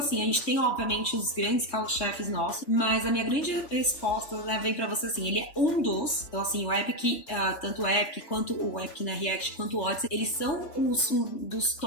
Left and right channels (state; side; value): late; right; 3.3 ms